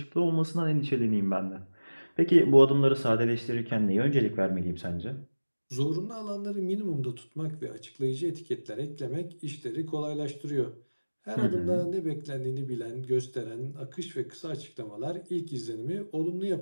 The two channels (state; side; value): inverted; both; correlation -1.00